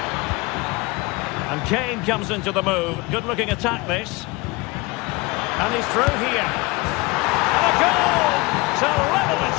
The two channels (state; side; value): quieter; right; 23.9 dB